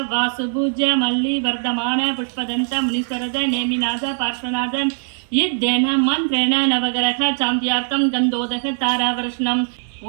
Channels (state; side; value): silent; left; 58 dB below the other